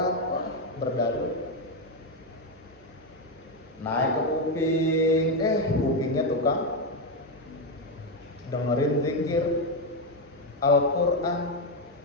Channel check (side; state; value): both; normal; correlation 0.07